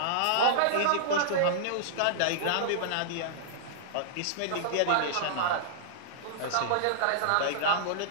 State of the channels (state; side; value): different; both; correlation -0.02